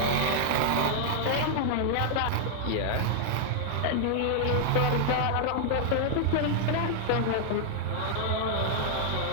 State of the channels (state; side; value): different; both; correlation -0.01